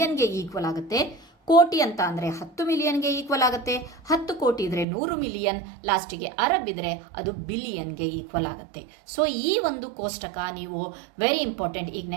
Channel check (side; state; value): left; drops out; at 4.9 s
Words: ಈಕ್ವಲ್ ಆಗುತ್ತೆ, ಕೋಟಿ ಅಂತ ಅಂದ್ರೆ 10 ಮಿಲಿಯನ್ಗೆ ಈಕ್ವಲ್ ಆಗುತ್ತೆ, 10 ಕೋಟಿ ಇದ್ರೆ 100 ಮಿಲಿಯನ್, ಲಾಸ್ಟಿಗೆ ಅರಬ್ ಇದ್ರೆ ಅದು ಬಿಲಿಯನ್ಗೆ ಈಕ್ವಲ್ ಆಗುತ್ತೆ. ಸೊ ಈ ಒಂದು ಕೋಷ್ಟಕ ನೀವು ವೆರಿ ಇಂಪಾರ್ಟೆಂಟ್. ಈಗ